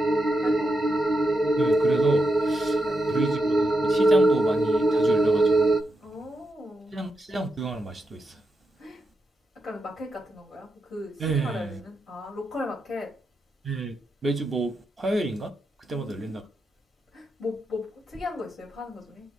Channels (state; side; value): normal; both; correlation 0.86